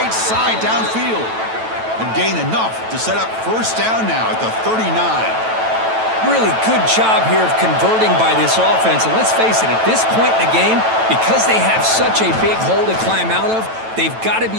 side downfield. And gain enough to set up first down now at the 39. Really good job here of converting by this offense. And let's face it, at this point in the game, because they have such a big hole to climb out of, they've got to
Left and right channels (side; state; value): left; late; 9.1 ms